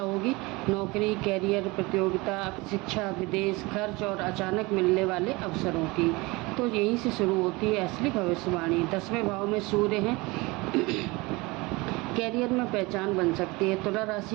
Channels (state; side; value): quieter; left; 23.8 dB